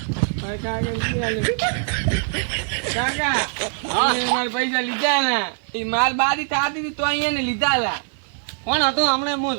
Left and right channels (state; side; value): silent; left; 62 dB below the other